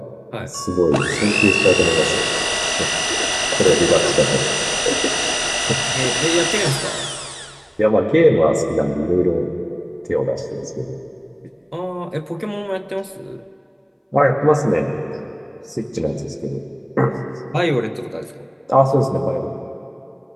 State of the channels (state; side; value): identical; both; correlation 1.00